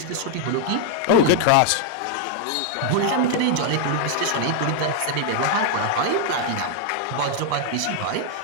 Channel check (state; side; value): different; both; correlation 0.00